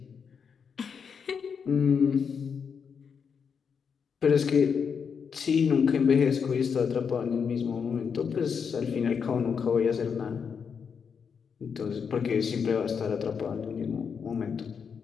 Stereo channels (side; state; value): right; quieter; 6.5 dB